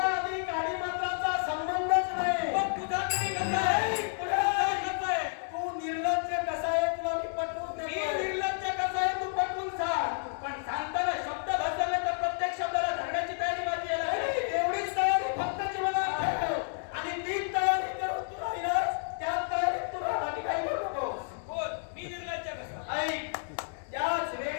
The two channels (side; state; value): right; silent; digital silence